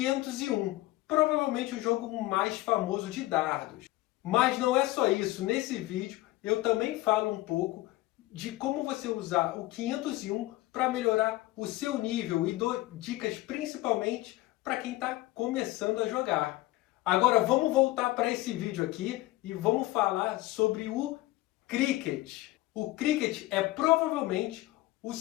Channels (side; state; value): right; quieter; 18.3 dB